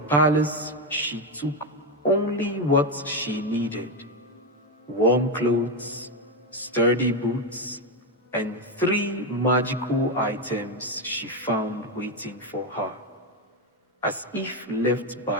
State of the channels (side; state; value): both; normal; correlation 0.08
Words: she took only what she needed: warm clothes, sturdy boots, and 3 magical items she found waiting for her, as if left